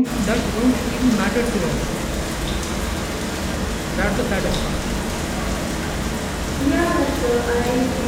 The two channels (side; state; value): both; identical; correlation 1.00